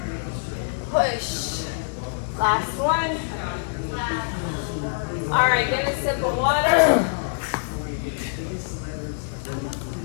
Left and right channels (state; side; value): silent; right; digital silence